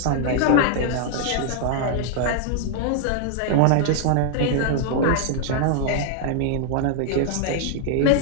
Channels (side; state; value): both; different; correlation 0.00